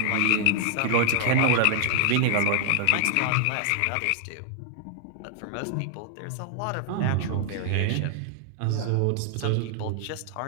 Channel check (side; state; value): both; different; correlation 0.00